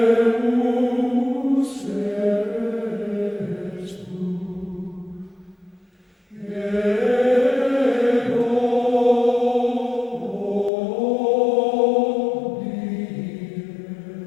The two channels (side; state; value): right; drops out; at 10.7 s